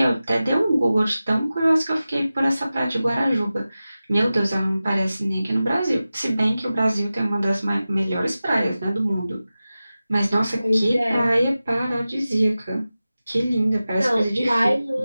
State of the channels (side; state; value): both; inverted; correlation -0.95